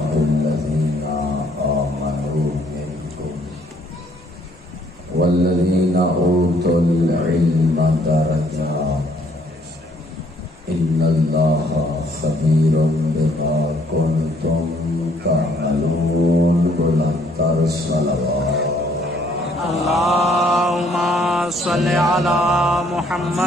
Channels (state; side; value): normal; both; correlation 0.64